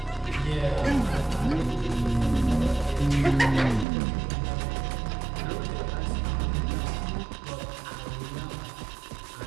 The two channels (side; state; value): left; drops out; at 3.9 s